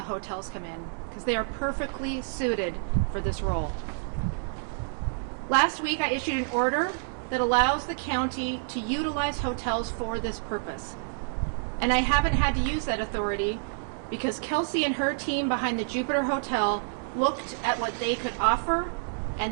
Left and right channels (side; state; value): left; silent; digital silence